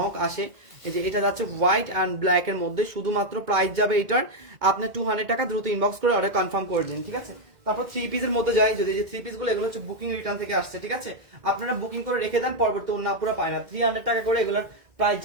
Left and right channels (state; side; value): late; left; 1.9 ms